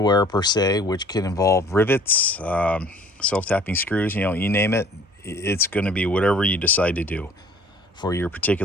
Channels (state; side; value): normal; both; correlation 0.52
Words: per se, which can involve rivets, self-tapping screws, you name it. It's going to be whatever you decide to do for your